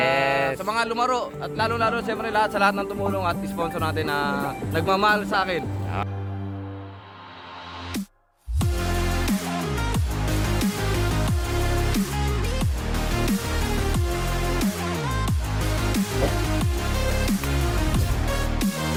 sa mga lumaro. At lalo-lalo, siyempre, sa lahat ng tumulong at sponsor natin na nagmamahal sa akin.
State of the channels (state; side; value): identical; both; correlation 1.00